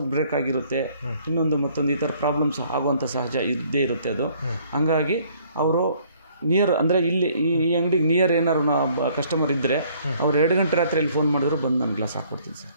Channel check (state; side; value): inverted; both; correlation -0.61